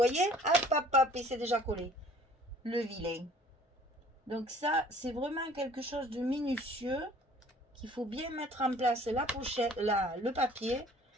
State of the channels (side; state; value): both; normal; correlation 0.53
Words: hop, hop, hop, et c'est déjà collé. Le vilain. Donc ça, c'est vraiment quelque chose de minutieux. Qu'il faut bien mettre en place la pochette, le papier.